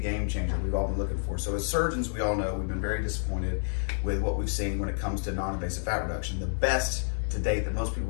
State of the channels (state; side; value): silent; right; 58 dB below the other